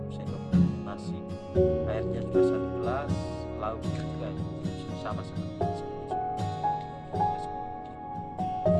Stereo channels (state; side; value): identical; both; correlation 1.00